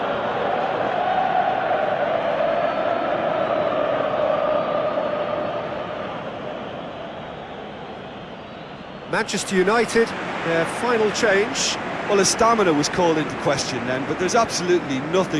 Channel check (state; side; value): identical; both; correlation 1.00